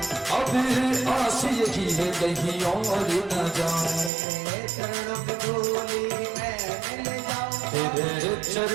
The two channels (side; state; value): left; drops out; at 4.1 s